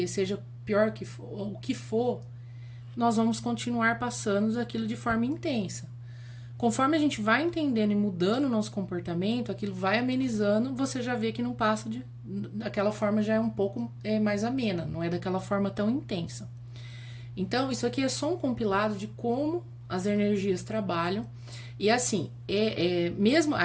seja pior que for, ou o que for, nós vamos continuar passando aquilo de forma intensa. Conforme a gente vai entendendo e mudando o nosso comportamento, aquilo vai amenizando, você já vê que não passa daquela forma, já é um pouco mais amena, não é daquela forma tão intensa. Então, isso aqui é só um compilado de como as energias trabalham. E assim, mesmo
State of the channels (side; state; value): both; identical; correlation 1.00